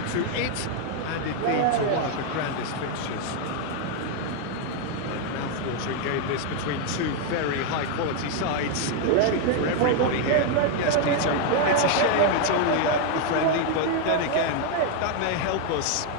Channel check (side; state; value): both; different; correlation 0.01